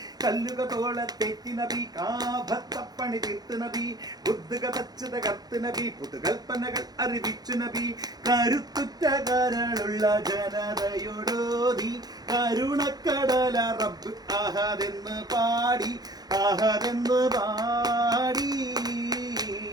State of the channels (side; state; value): left; late; 0.19 ms